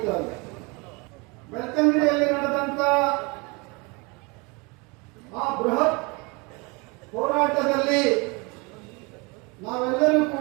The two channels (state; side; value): quieter; left; 28.5 dB